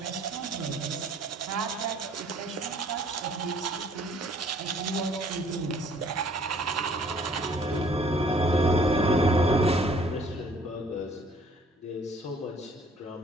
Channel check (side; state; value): both; normal; correlation 0.58